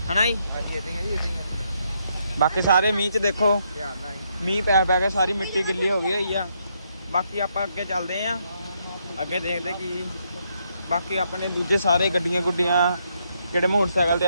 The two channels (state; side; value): inverted; both; correlation -0.76